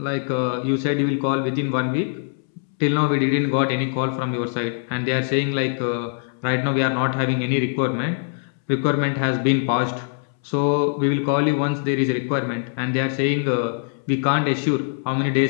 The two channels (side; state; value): right; silent; 63 dB below the other